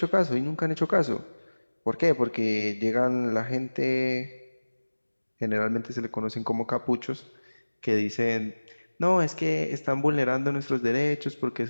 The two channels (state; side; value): inverted; both; correlation -1.00